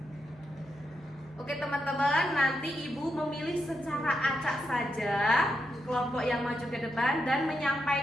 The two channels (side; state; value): both; normal; correlation 0.84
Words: Oke teman-teman, nanti Ibu memilih secara acak saja kelompok yang maju ke depan dan